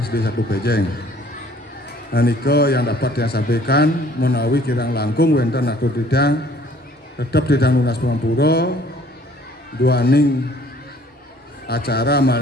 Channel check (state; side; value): normal; both; correlation 0.57